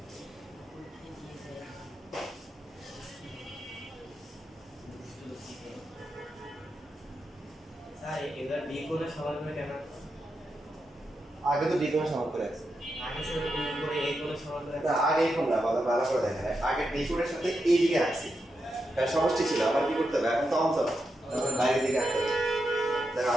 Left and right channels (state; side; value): normal; both; correlation 0.86